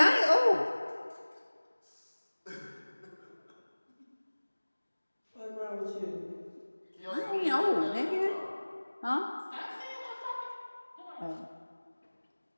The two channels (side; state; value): both; inverted; correlation -1.00